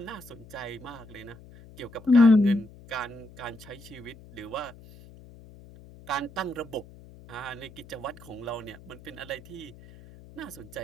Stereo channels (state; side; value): noise; left; hum, 20 dB below the sound